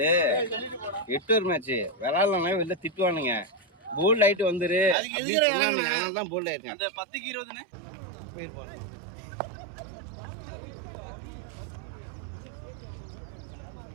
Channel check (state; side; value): drops out; left; at 5.0 s